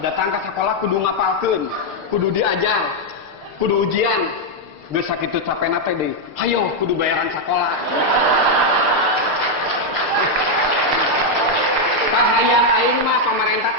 Datang ke sekolah kudu ngapalkeun, kudu diajar, kudu ujian. Geus sakitu capena teh deui. Hayo kudu bayaran sekolah. Kahayang aing mah pamarentah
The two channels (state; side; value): late; left; 6.6 ms